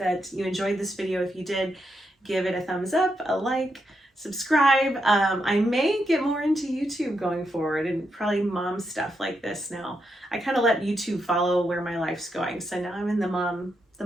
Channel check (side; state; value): both; normal; correlation 0.82